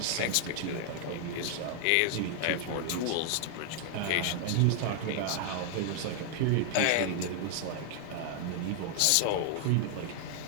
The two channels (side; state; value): both; different; correlation 0.00